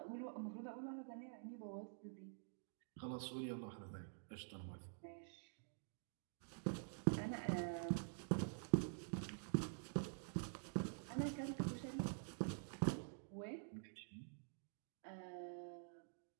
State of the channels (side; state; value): left; silent; digital silence